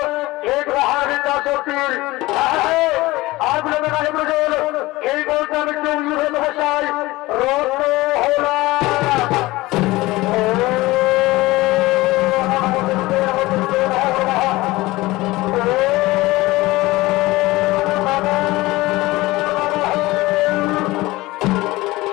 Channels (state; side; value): quieter; right; 19.7 dB